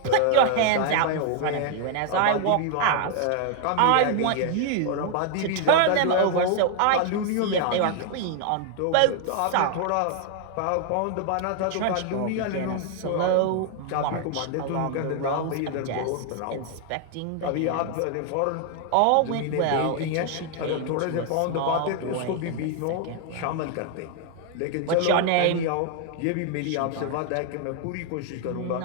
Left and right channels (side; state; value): both; different; correlation 0.00